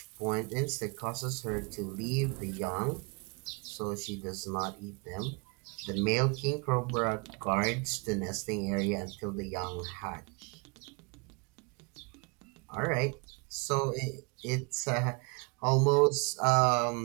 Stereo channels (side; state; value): left; quieter; 31.7 dB